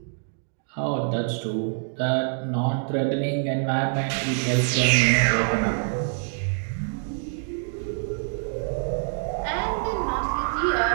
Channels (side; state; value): left; silent; 61 dB below the other